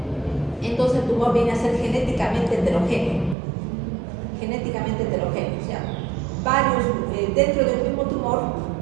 entonces el tumor viene a ser genéticamente heterogéneo. Genéticamente heterogéneo, o sea, dentro de un mismo tumor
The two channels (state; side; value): drops out; left; at 3.4 s